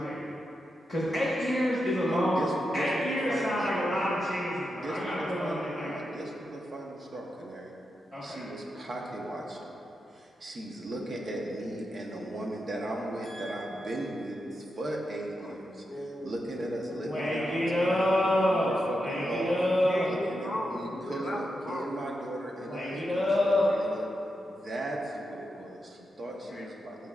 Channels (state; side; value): normal; both; correlation 0.87